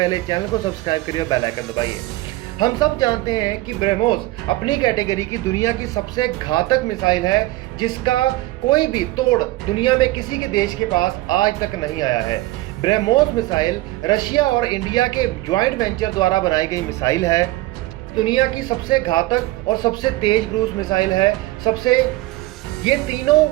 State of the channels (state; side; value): quieter; left; 18.5 dB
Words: चैनल को सब्सक्राइब करिए और बेल आइकन दबाइए। हम सब जानते हैं कि ब्रह्मोस अपनी कैटेगरी की दुनिया की सबसे घातक मिसाइल है, जिसका कोई भी तोड़ दुनिया में किसी के देश के पास आज तक नहीं आया है। ब्रह्मोस मिसाइल रशिया और इंडिया के ज्वाइंट वेंचर द्वारा बनाई गई मिसाइल है। दुनिया की सबसे घातक और सबसे तेज क्रूज मिसाइल है। ये तीनों